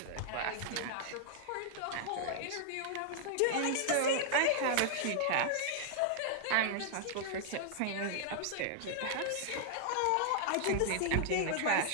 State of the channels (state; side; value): different; both; correlation -0.01